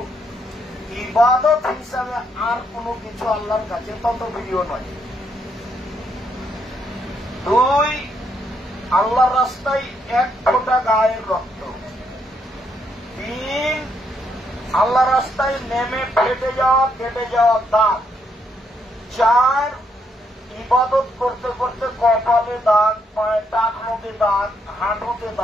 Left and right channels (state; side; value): normal; both; correlation 0.75